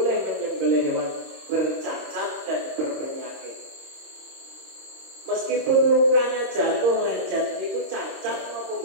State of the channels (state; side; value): late; left; 26 ms